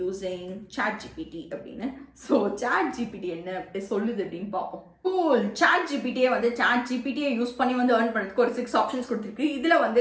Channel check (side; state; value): both; identical; correlation 1.00